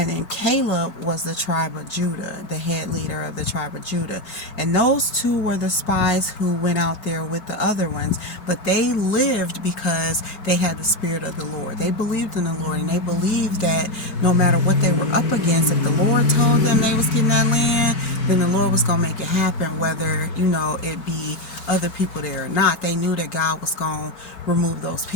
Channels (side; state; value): right; late; 5.3 ms